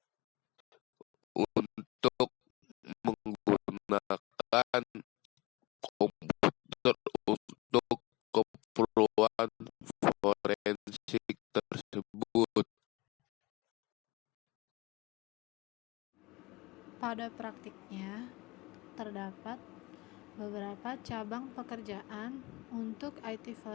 Untuk menggunakan komputer untuk keperluan forensik tersebut. Pada praktiknya, terdapat beberapa cabang pekerjaan untuk IT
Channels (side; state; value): right; quieter; 22.2 dB